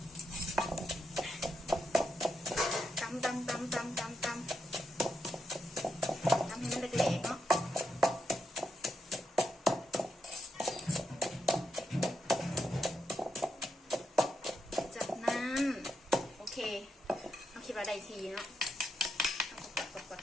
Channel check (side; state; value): both; normal; correlation 0.83